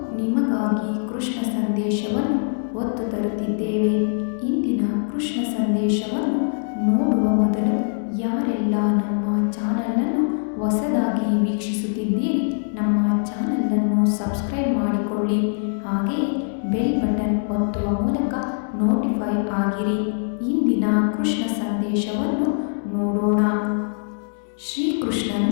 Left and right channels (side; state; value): right; silent; 64 dB below the other